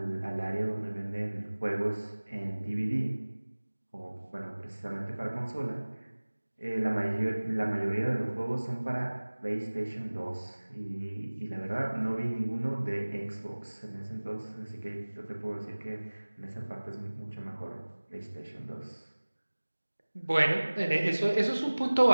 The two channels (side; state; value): both; inverted; correlation -1.00